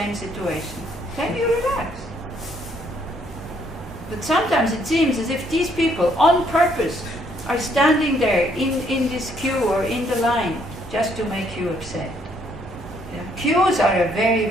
situation. Then you relax. But sometimes it seems as if these people, on purpose, are standing there in this queue or in the line just to make you upset. Yeah. Queues are a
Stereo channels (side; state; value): both; normal; correlation 0.68